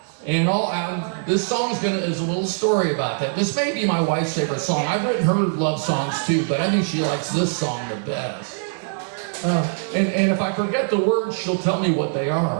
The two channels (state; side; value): silent; left; digital silence